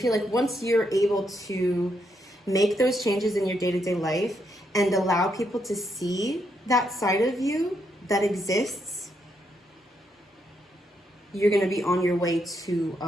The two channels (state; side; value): normal; both; correlation 0.78